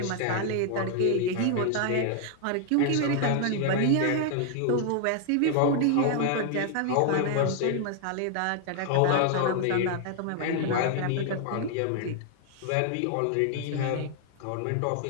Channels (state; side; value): different; both; correlation 0.00